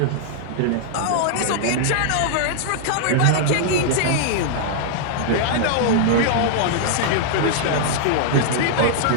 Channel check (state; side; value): different; both; correlation -0.01